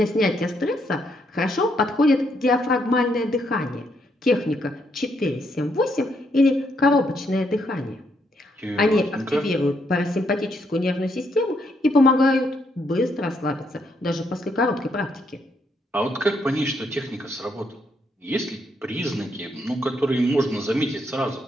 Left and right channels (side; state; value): both; normal; correlation 0.75